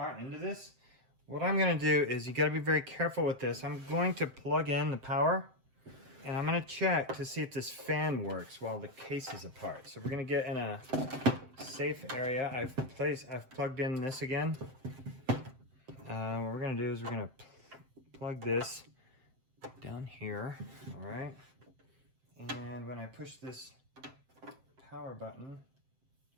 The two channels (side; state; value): left; late; 7.7 ms